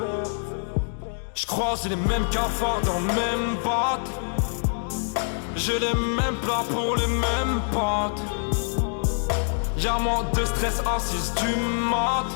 J'croise les mêmes cafards dans le même batte. J'ai les mêmes plats pour les mêmes pâtes. Y'a moins de stress à 6 du mat.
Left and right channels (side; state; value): right; silent; digital silence